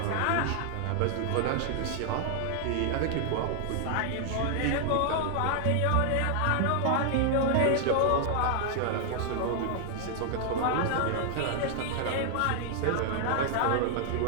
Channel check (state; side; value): different; both; correlation 0.00